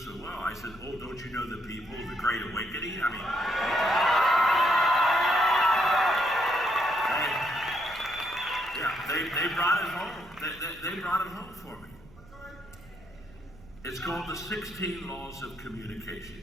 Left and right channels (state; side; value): noise; right; rumble, 23 dB below the sound